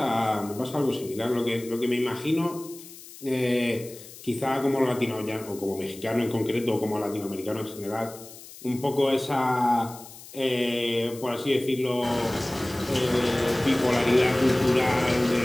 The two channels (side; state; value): left; noise; hiss, 17 dB below the sound